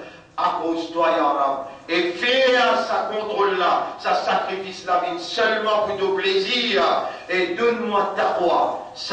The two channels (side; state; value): both; identical; correlation 1.00